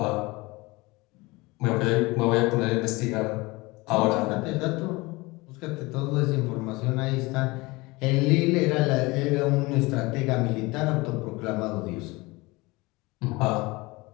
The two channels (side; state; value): right; quieter; 23.2 dB